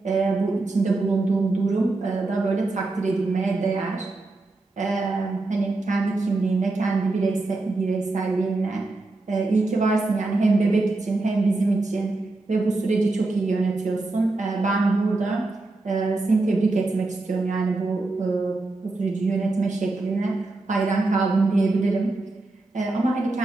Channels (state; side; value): quieter; left; 3.2 dB